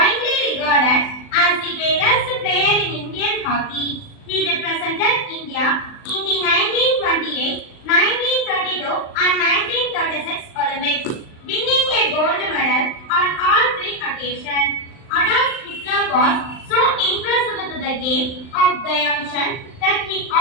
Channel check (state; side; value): late; right; 39 ms